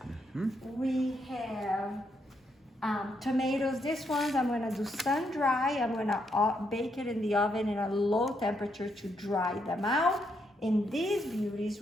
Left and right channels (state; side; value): normal; both; correlation 0.78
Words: We have tomatoes. This ones I'm gonna do sun dry. I'm gonna bake it in the oven in a low temperature to dry them out. And these beauties,